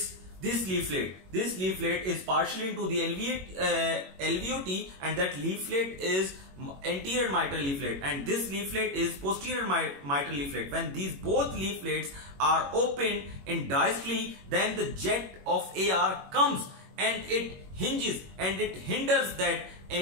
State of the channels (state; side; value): late; left; 21 ms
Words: leaflet is partially into the LVOT, and that leaflet is anterior mitral leaflet, and this leaflet is posterior mitral leaflet. When these both leaflets are open in diastole, then the jet of AR comes and it hinges and it hinders that